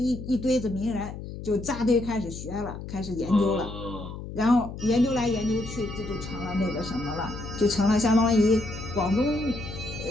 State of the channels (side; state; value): left; noise; hum, 10 dB below the sound